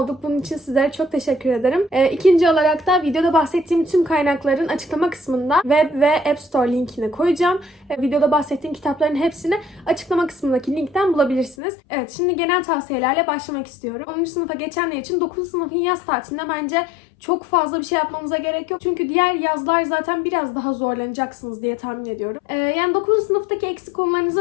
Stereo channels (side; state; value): right; drops out; at 11.6 s